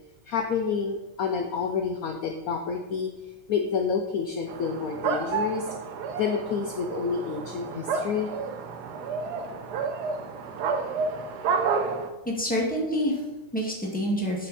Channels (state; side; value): normal; both; correlation 0.05